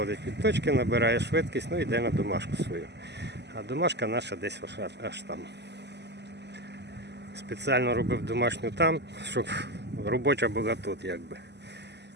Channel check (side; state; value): left; late; 0.50 ms